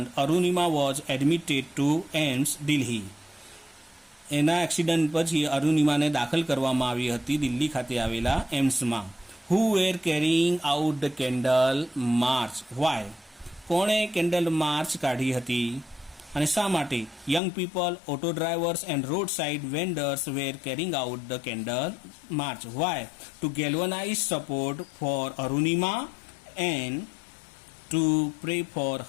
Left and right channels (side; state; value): right; drops out; at 17.4 s